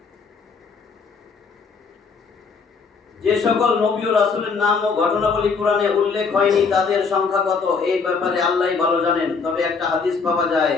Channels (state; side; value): quieter; right; 5.1 dB